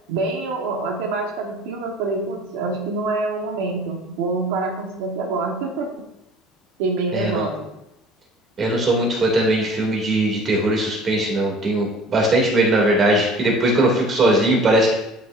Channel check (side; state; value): both; normal; correlation 0.47